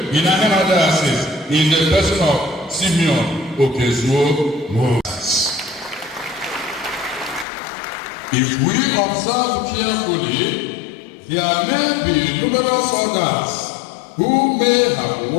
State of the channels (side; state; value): right; drops out; at 7.5 s